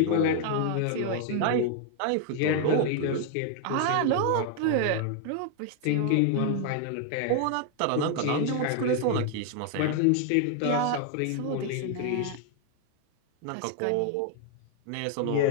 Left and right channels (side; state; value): both; different; correlation 0.00